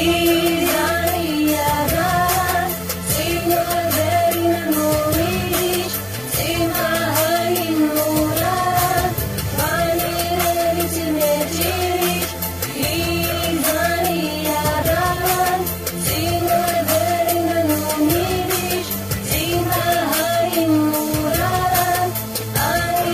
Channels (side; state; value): left; noise; hum, 25 dB below the sound